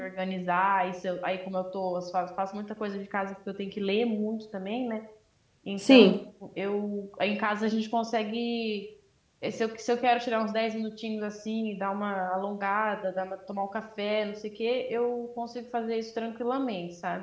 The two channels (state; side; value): identical; both; correlation 1.00